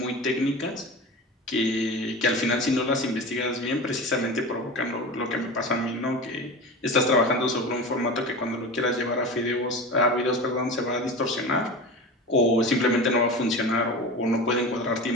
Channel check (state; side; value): normal; both; correlation 0.30